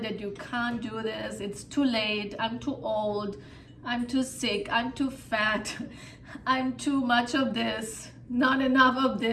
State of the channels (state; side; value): identical; both; correlation 1.00